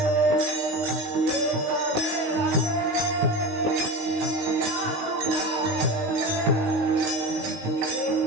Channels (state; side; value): late; left; 19 ms